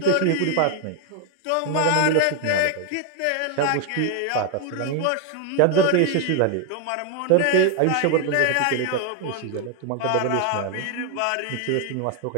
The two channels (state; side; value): different; both; correlation 0.00